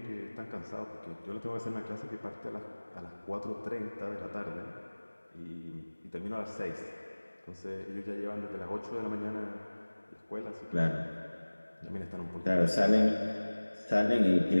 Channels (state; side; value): inverted; both; correlation -1.00